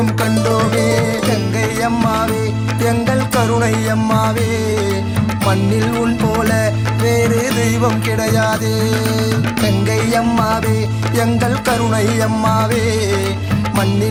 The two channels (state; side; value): identical; both; correlation 1.00